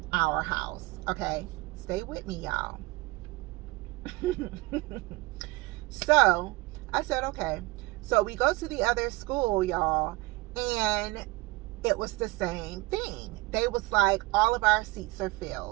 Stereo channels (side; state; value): left; quieter; 21.3 dB